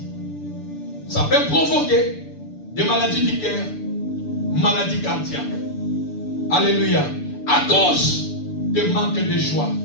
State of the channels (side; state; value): right; late; 6.9 ms